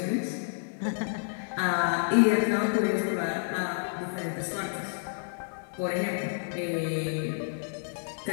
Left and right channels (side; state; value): right; silent; digital silence